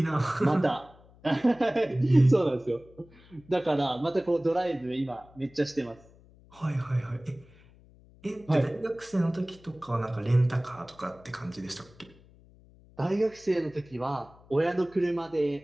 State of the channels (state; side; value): noise; left; hum, 26 dB below the sound